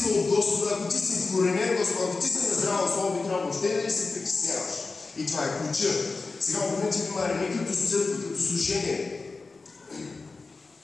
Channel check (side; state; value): right; quieter; 3.9 dB